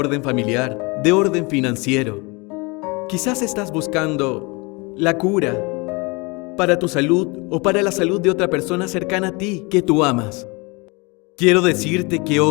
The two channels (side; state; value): right; quieter; 27.7 dB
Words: familiar, de orden financiero, quizás estás buscando la cura para tu salud o para la salud de otra persona cercana a ti que tú amas. Quiero decirte que